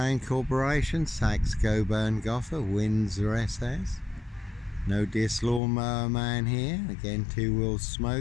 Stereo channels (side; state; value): right; drops out; at 5.6 s